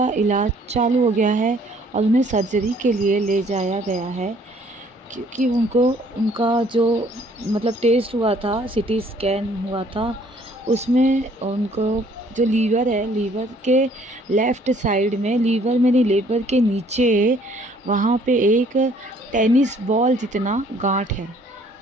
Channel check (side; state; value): both; normal; correlation 0.60